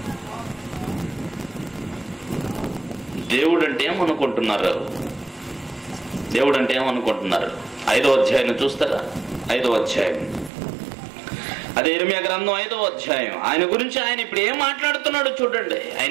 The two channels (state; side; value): drops out; left; at 10.5 s